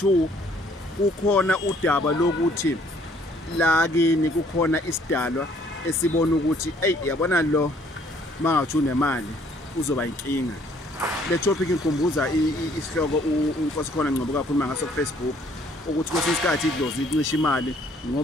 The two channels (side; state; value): both; normal; correlation 0.62